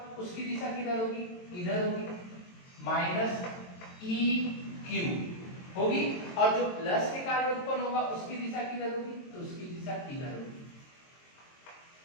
उसकी दिशा किधर होगी? इधर होगी, माइनस ई क्यू होगी। और जो प्लस के कारण उत्पन्न होगा उसकी दिशा किधर होगी? तो उसकी दिशा इधर होगी।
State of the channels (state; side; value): late; right; 22 ms